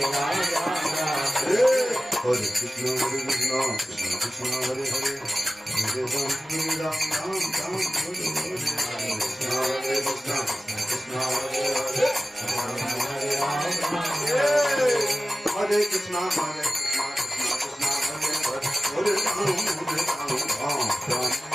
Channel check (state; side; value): normal; both; correlation 0.95